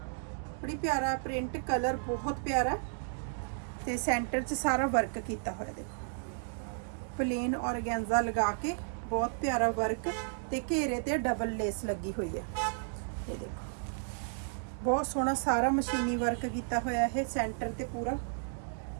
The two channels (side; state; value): left; silent; digital silence